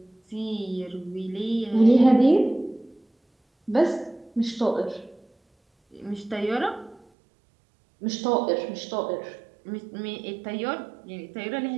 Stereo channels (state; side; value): drops out; left; at 7.0 s